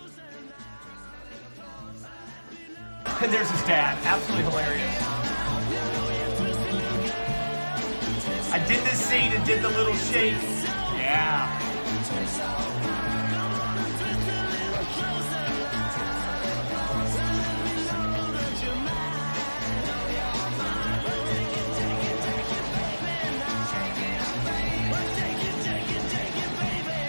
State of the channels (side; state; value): both; inverted; correlation -1.00